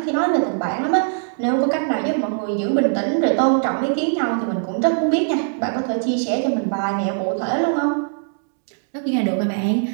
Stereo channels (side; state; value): left; silent; digital silence